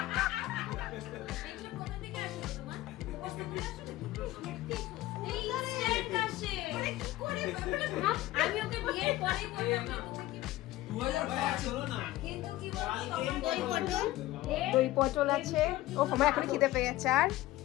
আমি ওকে বিয়ের পরেই বললাম তুমি কি 2005 হলো না কিন্তু কি বলছো দই পটল আছে। ও আমার এখন খিদে পেয়ে গেছে। আর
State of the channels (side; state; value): right; quieter; 16.6 dB